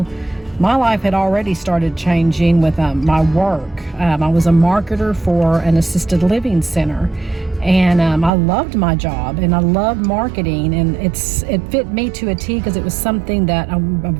my life had already started changing with my work. I was a marketer for an assisted living center. And I loved my job and I loved marketing, and it fit me to a T because it was something that I'm a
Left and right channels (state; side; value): drops out; left; at 8.3 s